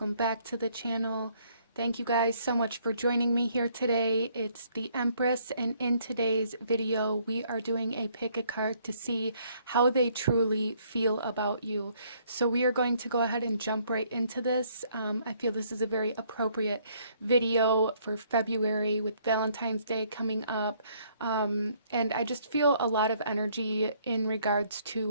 back to the channel. Thank you guys so much for joining me here today. It's the Empress, and in today's video, we are doing a pick a card to see how they truly feel about you. So we are going to go ahead and jump right into this. I feel this is a very appropriate video for February with Valentine's Day coming up. And I just feel a lot of energy in regards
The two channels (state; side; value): inverted; both; correlation -0.66